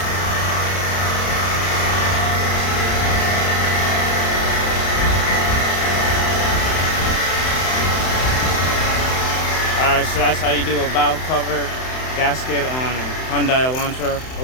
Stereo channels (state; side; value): late; right; 31 ms